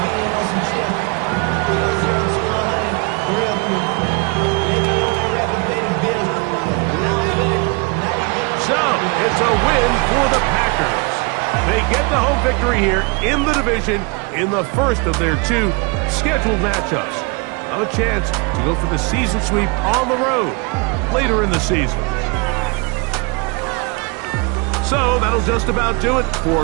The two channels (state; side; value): quieter; left; 31.2 dB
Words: So, it's a win for the Packers. They get the home victory here in the division in the first of their 2 scheduled matchups. Have a chance to go for the season sweep on the road later in the season. So that'll just about do it